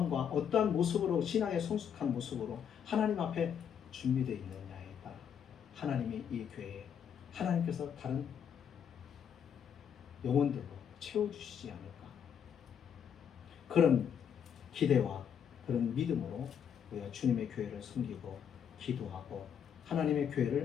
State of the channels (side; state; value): right; quieter; 8.2 dB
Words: 어떠한 모습으로 신앙의 성숙한 모습으로 하나님 앞에 준비되어 있느냐에 따라 하나님이 이 교회에 하나님께서 다른 영혼들로 채워주시지 않을까. 그런 기대와 그런 믿음으로 우리가 주님의 교회를 섬기고 기도하고 하나님의